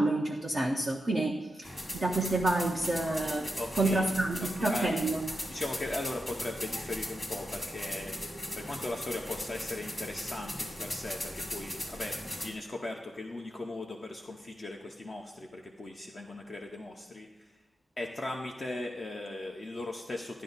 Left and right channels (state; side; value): normal; both; correlation 0.87